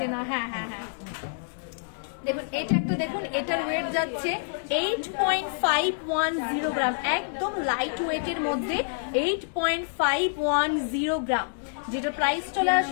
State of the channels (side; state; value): right; silent; digital silence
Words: না। হ্যাঁ হ্যাঁ হ্যাঁ, দেখুন এটা একটা, দেখুন এটার ওয়েট যাচ্ছে 8.510 গ্রাম, একদম লাইট ওয়েটের মধ্যে 8.510 গ্রাম, যেটা প্রাইস চলে